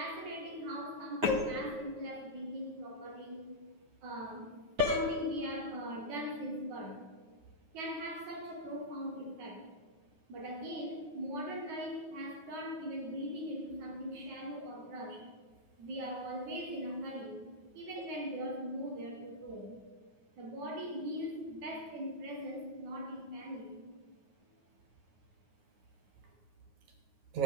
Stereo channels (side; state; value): left; late; 9.4 ms